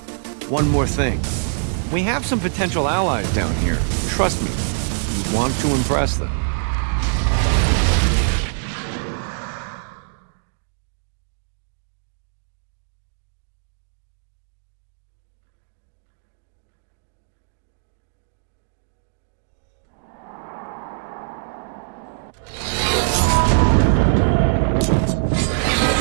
one more thing. We have some potential allies down here. Trust me, you want to impress them.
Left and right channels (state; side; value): silent; left; digital silence